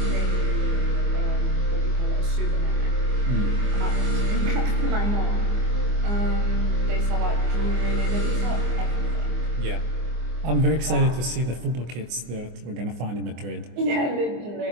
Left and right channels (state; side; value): late; left; 24 ms